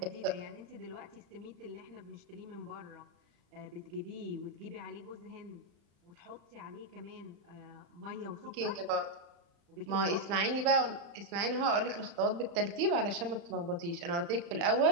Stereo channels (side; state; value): left; late; 35 ms